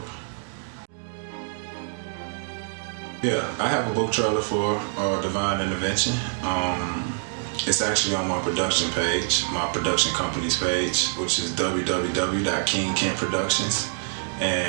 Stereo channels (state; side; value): silent; left; digital silence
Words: Yeah, I have a book trailer for Divine Intervention. It's actually on my production page, my production company's page, which is www.kingkentproductions.